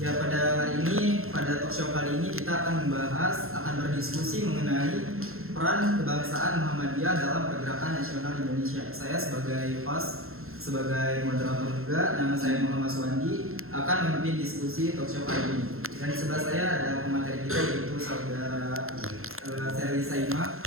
pada hari ini, pada talk show kali ini kita akan berdiskusi mengenai peran kebangsaan Muhammadiyah dalam pergerakan nasional Indonesia. Saya sebagai host, sebagai moderator juga, nama saya Muhammad Suwandi, akan memimpin diskusi talk show kali ini. Dan di sebelah saya ada pemateri kita, yaitu saudara Seri Saima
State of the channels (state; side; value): late; left; 0.62 ms